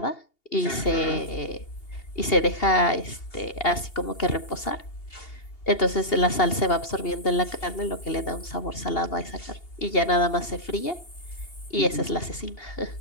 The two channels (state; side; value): late; right; 2.8 ms